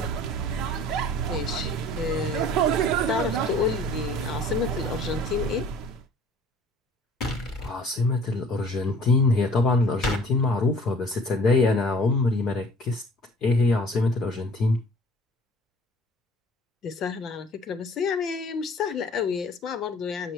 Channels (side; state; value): both; normal; correlation 0.49